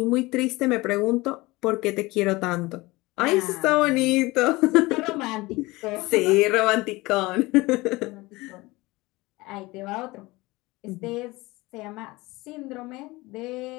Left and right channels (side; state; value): right; quieter; 21.5 dB